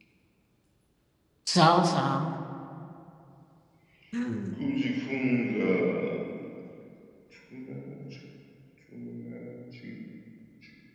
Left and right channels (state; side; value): identical; both; correlation 1.00